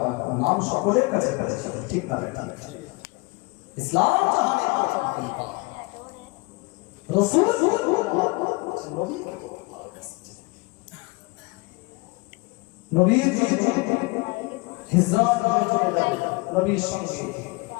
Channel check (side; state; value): right; quieter; 26.6 dB